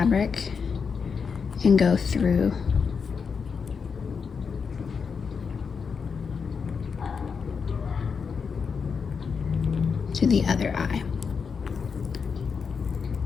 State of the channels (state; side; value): quieter; right; 5.8 dB